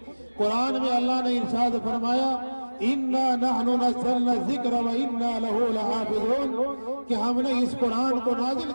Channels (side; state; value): both; inverted; correlation -1.00